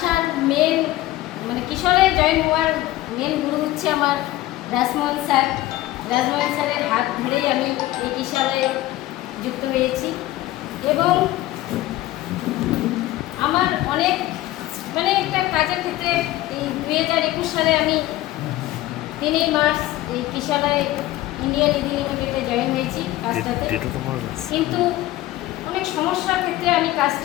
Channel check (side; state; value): right; quieter; 16.1 dB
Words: মেন মানে কিশোরালয়ে জয়েন হওয়ার মেন গুরু হচ্ছে আমার রাজমোহন স্যার। রাজমোহন স্যারের হাত ধরেই আমি এই কিশোরালয়ে যুক্ত হয়েছি এবং আমার অনেক মানে একটা কাজের ক্ষেত্রে এই 2021 সালে আমি 3 মার্চ এই কিশোরালয় ইন্ডিয়ান ইদি লিমিটেডে জয়েন হয়েছি কাজটাতে। কিন্তু অনেক সমস্যার ক্ষেত্রে আমি